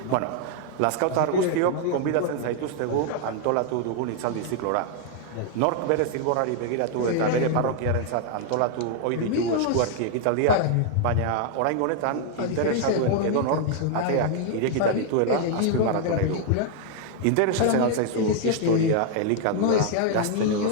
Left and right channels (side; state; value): both; different; correlation 0.00